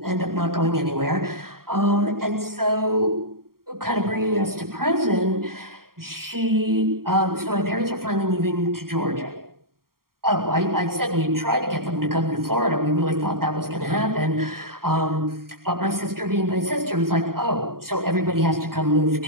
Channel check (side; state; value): left; late; 0.93 ms